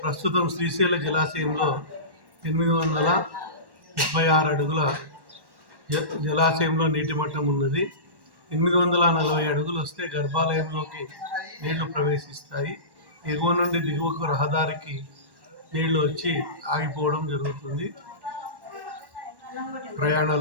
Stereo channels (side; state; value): left; late; 1.1 ms